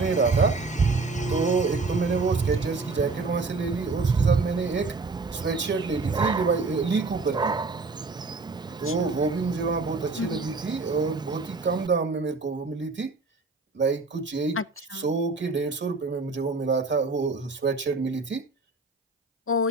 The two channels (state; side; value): quieter; left; 3.8 dB